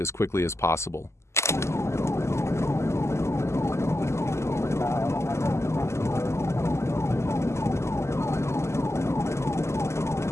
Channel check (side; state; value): right; late; 0.13 ms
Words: quickly as possible.